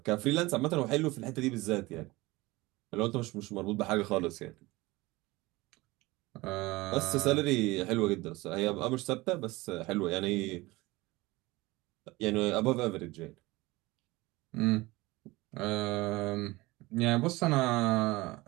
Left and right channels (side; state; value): left; quieter; 21.1 dB